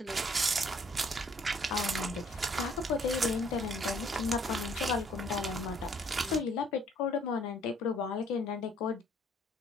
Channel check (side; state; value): both; normal; correlation 0.61